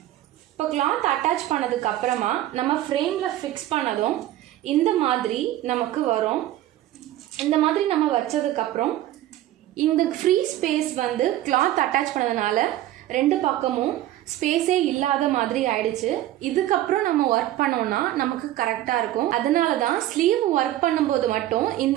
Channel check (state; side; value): quieter; left; 14.1 dB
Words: இப்போ கிளாத் அட்டாச் பண்ணதுக்கு அப்புறமா நம்ம ஃப்ரேமில் ஃபிக்ஸ் பண்ணதும் இந்த மாதிரி நமக்கு வரும். இந்த மாதிரி நம்ம வச்சதுக்கப்புறம் இந்த ஃப்ரீ ஸ்பேஸ் வந்து கிளாத் அட்டாச் பண்ணதுனால ரெண்டு பக்கமும் ஸ்பேஸே இல்லாத மாதிரி ஆயிடுச்சு. இதுக்கப்புறம் நம்ம ஒர்க் பண்ணோம்னா நமக்கு கரெக்டாக இருக்கும். அதனால தான் ஸ்லீவ் ஒர்க் பண்ணும்போது மட்டும்